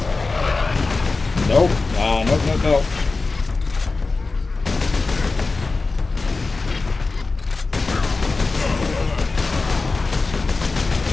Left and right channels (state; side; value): quieter; right; 3.8 dB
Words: Nope. Nope, nope, nope.